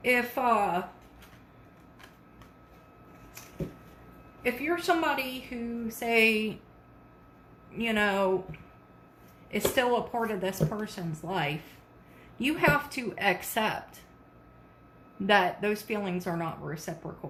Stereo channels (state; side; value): identical; both; correlation 1.00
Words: If you're somebody who, say, you know, is still a part of this person's life, you have to accept that those feelings are not